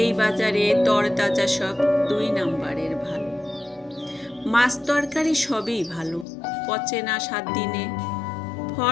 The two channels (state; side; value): drops out; right; at 6.2 s